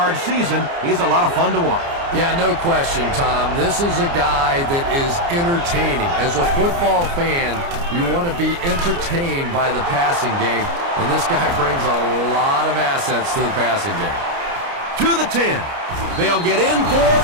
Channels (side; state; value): left; late; 29 ms